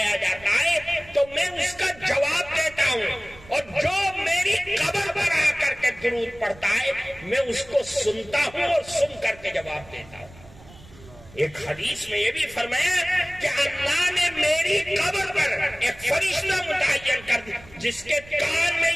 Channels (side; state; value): right; noise; rumble, 22 dB below the sound